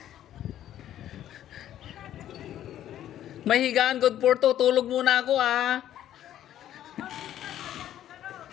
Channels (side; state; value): right; quieter; 11.7 dB